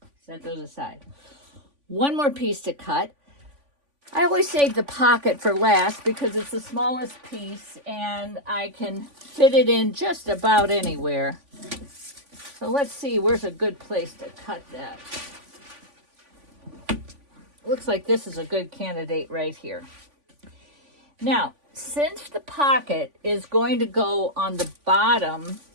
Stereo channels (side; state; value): left; late; 3.5 ms